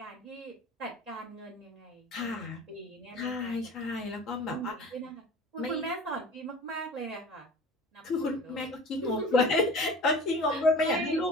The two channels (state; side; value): normal; both; correlation 0.40